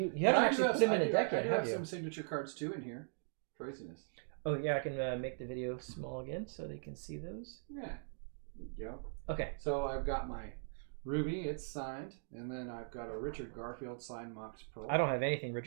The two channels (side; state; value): left; silent; digital silence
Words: haven't actually put them in a deck yet, I do have have you? some signature cards too in here. Craziness. Oh yeah, I can make the video small again so they can see those. Yeah. There you go. Okay. So I've got my Ruby, it's signed, and then I've got a Richard Garfield signed Mox Pearl. I don't have anything